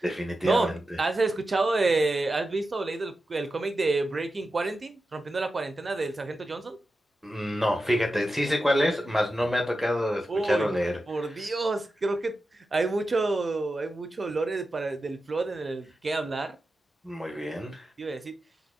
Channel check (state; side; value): normal; both; correlation 0.91